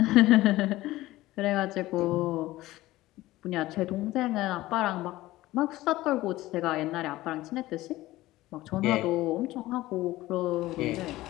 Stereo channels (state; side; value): quieter; right; 17.2 dB